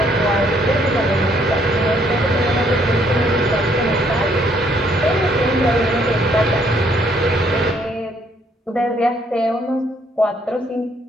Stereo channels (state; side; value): normal; both; correlation 0.67